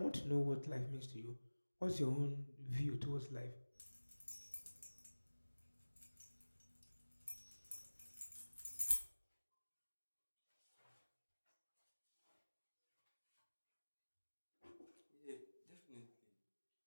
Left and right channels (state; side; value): inverted; both; correlation -1.00